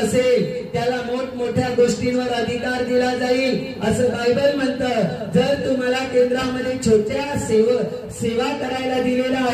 त्याला मोठमोठ्या गोष्टींवर अधिकार दिला जाईल, असं बायबल म्हणतं. जर तुम्हाला केंद्रामध्ये छोट्या सेवा करायला दिलेल्या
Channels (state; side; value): identical; both; correlation 1.00